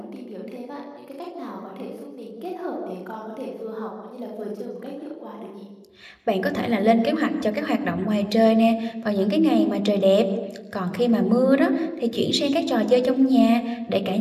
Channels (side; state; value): both; identical; correlation 1.00